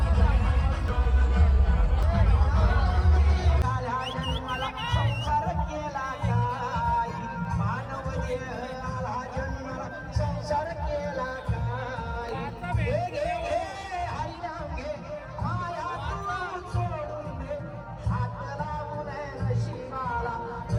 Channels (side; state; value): both; identical; correlation 1.00